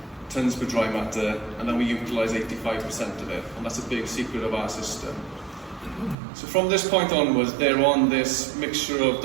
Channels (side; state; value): left; drops out; at 6.2 s